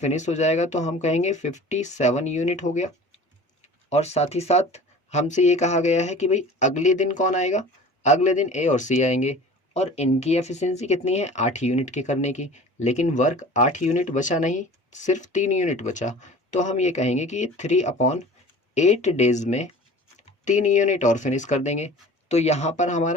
हो जाएगा तो हम कहेंगे 57 यूनिट हो गया। और साथ ही साथ हमसे ये कहा गया है कि भाई अगले दिन कौन आएगा, अगले दिन ए और सी आएंगे, और इनकी एफिशिएंसी कितनी है, 8 यूनिट के करने की। लेकिन वर्क 8 यूनिट बचा नहीं, सिर्फ 3 यूनिट बचा। तो हम ये कहेंगे कि 3/8 डेज में 3 यूनिट और फिनिश कर देंगे। तो यहाँ पर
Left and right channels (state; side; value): normal; both; correlation 0.42